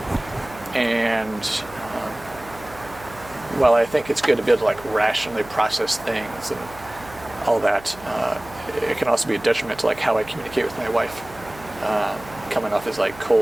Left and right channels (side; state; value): right; noise; hum, 20 dB below the sound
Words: and while I think it's good to be able to like rationally process things and all that, it can also be a detriment to like how I communicate with my wife, coming off as like